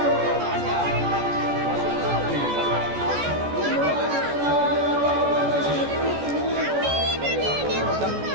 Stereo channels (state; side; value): late; left; 14 ms